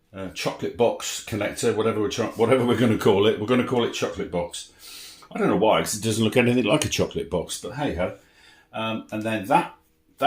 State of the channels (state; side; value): identical; both; correlation 1.00